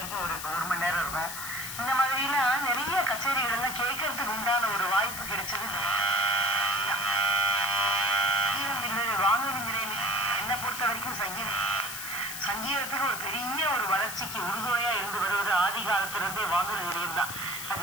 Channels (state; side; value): noise; left; hiss, 7 dB below the sound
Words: ஒரு மணி நேரம் இருக்கும். இந்த மாதிரிலாம் நிறைய கச்சேரிகள் எல்லாம் கேட்கறதுக்கு உண்டான ஒரு வாய்ப்பு கிடைச்சது. வானொலி நிலையம் என்னை பொறுத்த வரைக்கும் சங்கீதத்துக்கு ஒரு பெரிய ஒரு வளர்ச்சிக்கு உறுதுணையா இருந்து வருவது ஆதி காலத்திலிருந்தே வானொலி நிலையம் தான்.